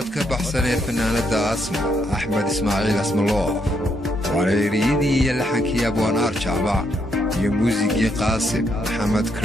بحسن فنانة أسمع أحمد إسماعيل اسم الله وريريدي يلحنك يا أبو نار شعبا يا موسيقي قاسم محمد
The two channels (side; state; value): both; normal; correlation 0.76